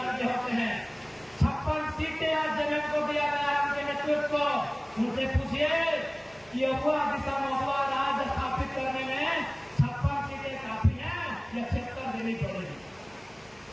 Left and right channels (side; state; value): right; noise; hum, 29 dB below the sound